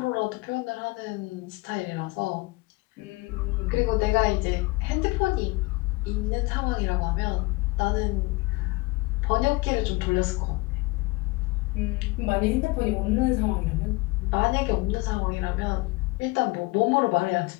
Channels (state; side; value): quieter; right; 23.8 dB